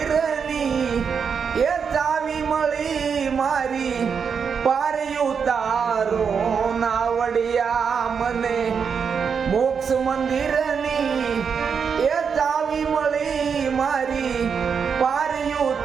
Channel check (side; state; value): left; quieter; 6.4 dB